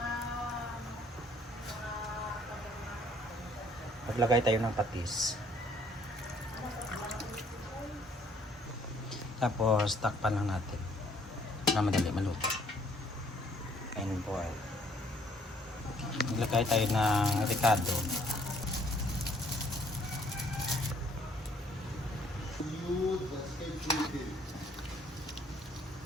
Maglagay tayo ng patis. Tapos takpan lang natin na madali maluto. And boil. Maglagay tayo ng ricado.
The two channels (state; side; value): normal; both; correlation 0.62